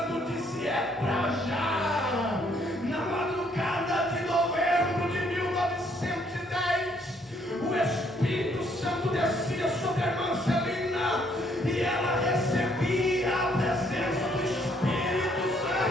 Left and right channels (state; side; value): normal; both; correlation 0.68